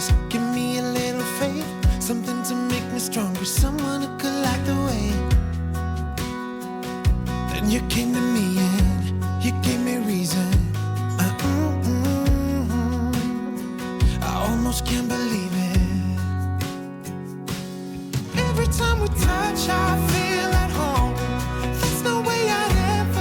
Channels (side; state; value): both; identical; correlation 1.00